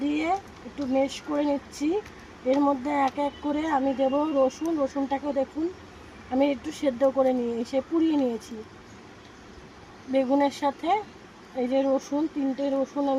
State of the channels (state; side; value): identical; both; correlation 1.00